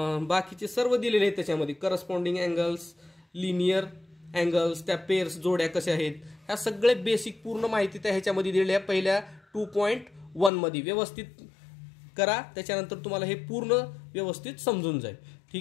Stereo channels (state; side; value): drops out; right; at 10.5 s